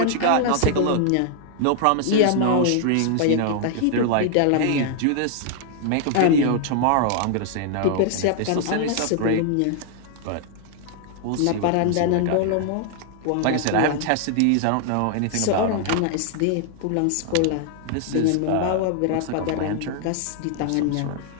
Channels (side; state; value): both; different; correlation 0.00